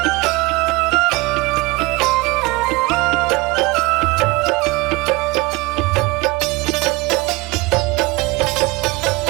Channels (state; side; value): quieter; left; 23.3 dB